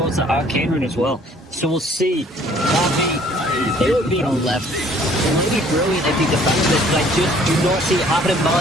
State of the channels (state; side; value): normal; both; correlation 0.57